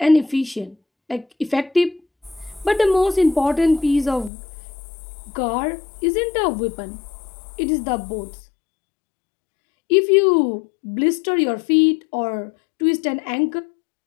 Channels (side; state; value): right; drops out; at 4.3 s